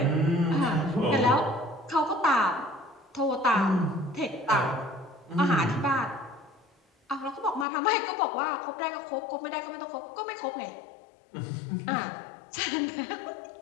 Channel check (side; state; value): right; drops out; at 7.7 s